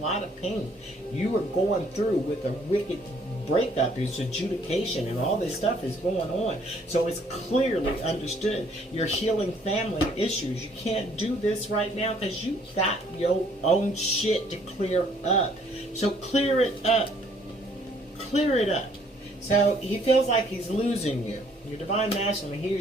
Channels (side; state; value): both; normal; correlation 0.63